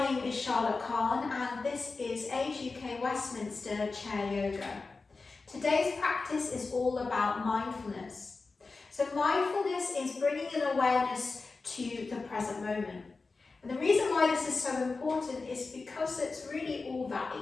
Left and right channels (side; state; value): right; quieter; 4.0 dB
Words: name is Charlotte Kahn and this is Age UK Westminster Chair Yoga. Today's practice is all about mindfulness. So mindfulness is bringing an awareness to the present moment. And the reason why this is so important is because it's really all that